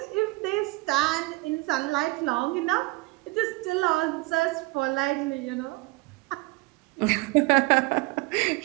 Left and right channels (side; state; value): left; quieter; 24.1 dB